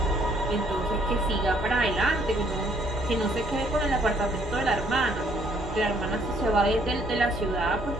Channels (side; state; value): both; normal; correlation 0.65